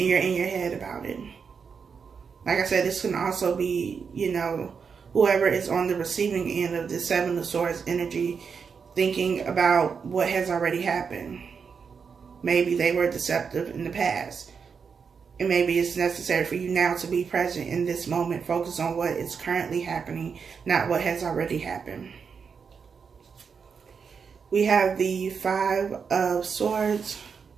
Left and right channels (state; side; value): quieter; left; 6.0 dB